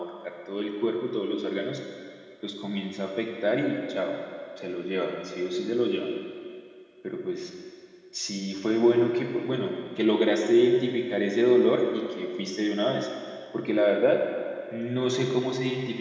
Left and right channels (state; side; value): identical; both; correlation 1.00